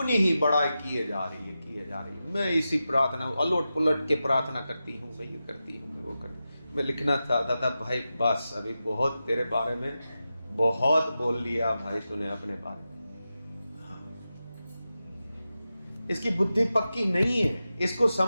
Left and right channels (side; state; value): both; inverted; correlation -0.91